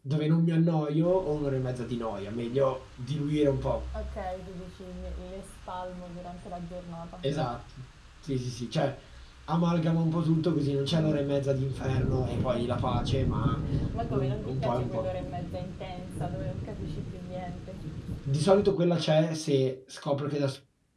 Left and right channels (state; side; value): identical; both; correlation 1.00